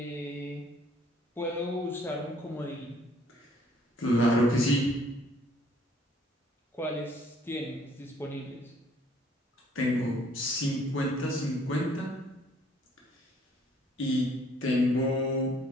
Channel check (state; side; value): normal; both; correlation 0.61